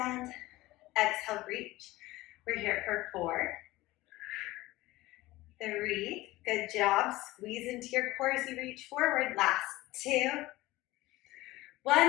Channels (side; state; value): right; quieter; 18.5 dB